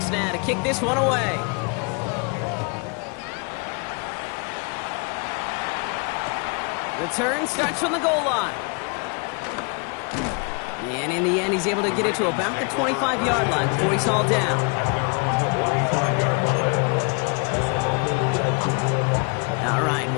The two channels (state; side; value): quieter; right; 34.9 dB